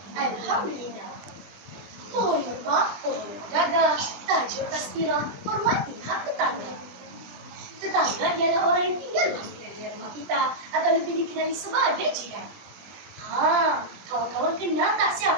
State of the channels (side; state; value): left; late; 20 ms